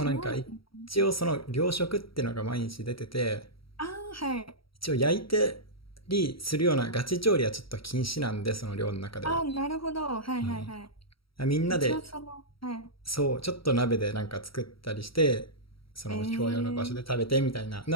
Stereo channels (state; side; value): late; right; 0.75 ms